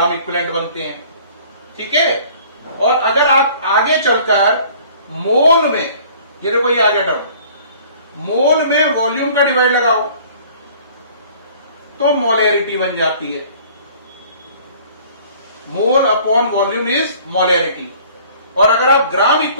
इक्विवेलेंट बनते हैं, ठीक है। और अगर आप आगे चलकर मोल में, ये देखो ये आ गया टर्म, मोल में वॉल्यूम का डिवाइड लगाओ तो मोलैरिटी बन जाती है। Mole upon volume is molarity. और अगर आप ग्राम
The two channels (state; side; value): inverted; both; correlation -0.52